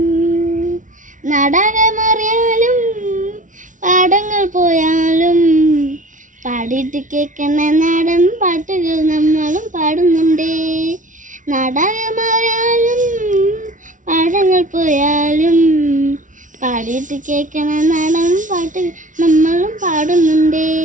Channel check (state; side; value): late; left; 0.37 ms